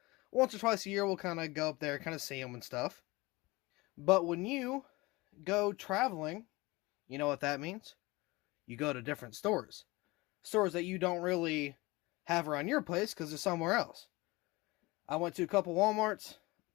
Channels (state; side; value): quieter; right; 22.5 dB